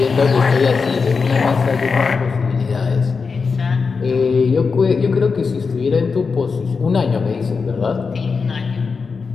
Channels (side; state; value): right; quieter; 5.0 dB